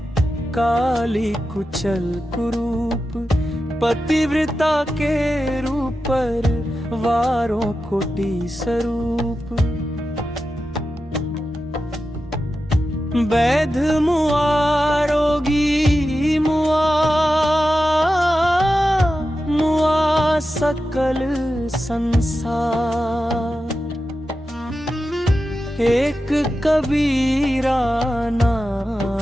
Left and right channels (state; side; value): normal; both; correlation 0.91